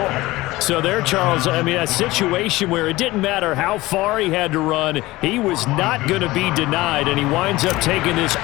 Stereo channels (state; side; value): quieter; right; 19.1 dB